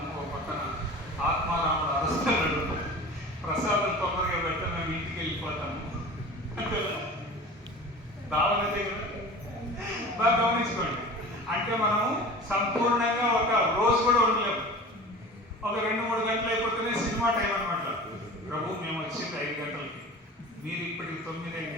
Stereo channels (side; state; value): both; normal; correlation 0.38